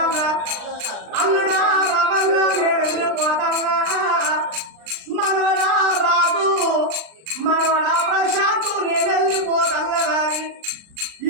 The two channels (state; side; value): late; left; 39 ms